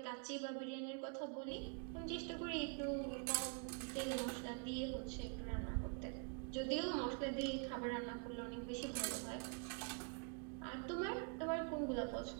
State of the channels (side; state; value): left; quieter; 37.9 dB